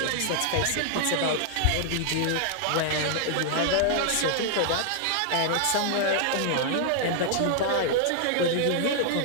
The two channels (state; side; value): different; both; correlation 0.00